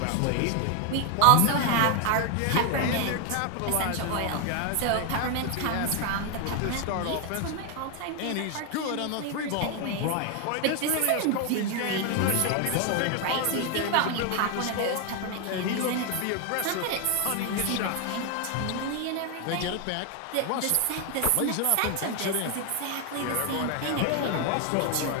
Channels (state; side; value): different; both; correlation 0.01